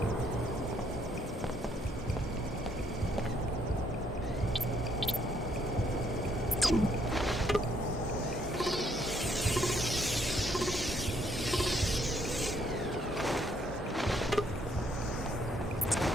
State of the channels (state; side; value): normal; both; correlation 0.69